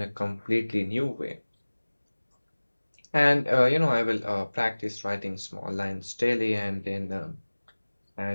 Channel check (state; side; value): inverted; both; correlation -1.00